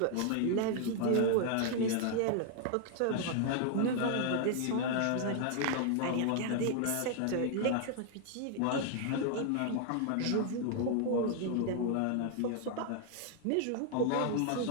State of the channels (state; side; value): different; both; correlation 0.00